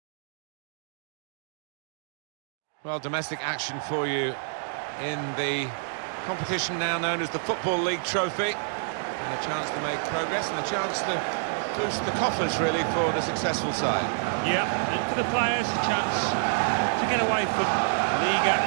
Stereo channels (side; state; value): left; silent; digital silence